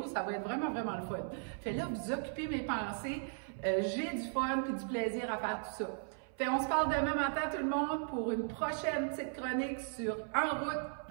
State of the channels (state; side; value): silent; left; 53 dB below the other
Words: ça va être vraiment, vraiment le fun. Fait là, vous occupez mes pensées, j'ai du fun puis du plaisir à faire tout ça. Fait on se parle demain matin tout le monde pour une prochaine petite chronique sur En route